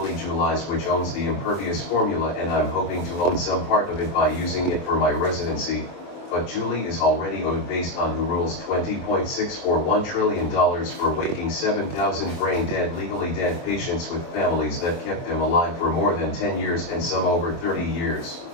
Julies, which owns the Impervious formula, and I'm hoping to own some part of it by using it for my residency. But Julie is already owed based on who rules $20.641 trillion for waking 7,000 brain-dead, legally dead patients with families that kept them alive for more than 10 years and some over 30 years.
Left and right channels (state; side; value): late; right; 24 ms